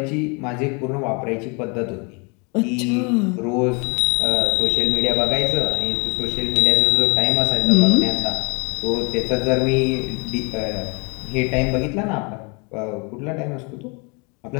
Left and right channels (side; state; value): right; quieter; 32.4 dB